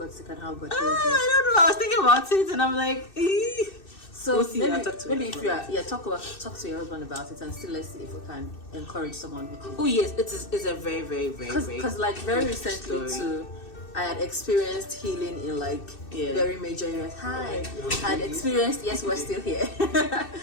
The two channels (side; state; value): right; late; 2.6 ms